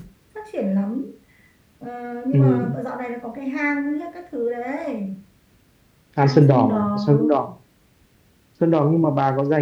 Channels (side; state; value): both; identical; correlation 1.00